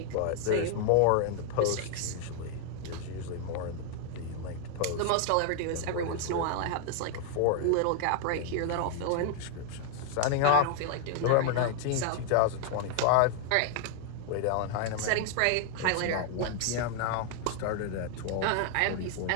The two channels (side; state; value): both; different; correlation 0.00